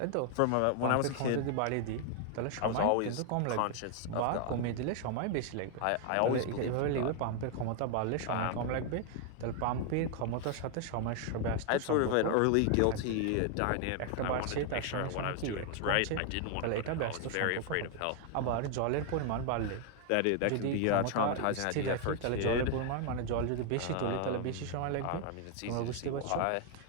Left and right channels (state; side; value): different; both; correlation 0.00